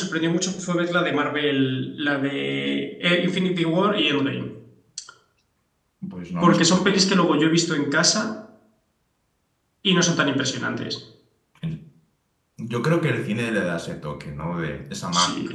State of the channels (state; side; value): identical; both; correlation 1.00